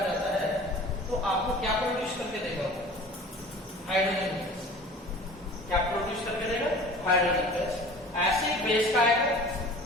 जाता है तो आपको क्या प्रोड्यूस करके देगा? Hydrogen gas. क्या प्रोड्यूस करके देगा? Hydrogen gas. एसिड बेस का आएगा।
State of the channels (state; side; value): normal; both; correlation 0.43